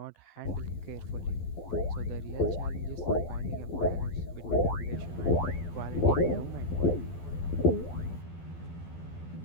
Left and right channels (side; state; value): right; late; 12 ms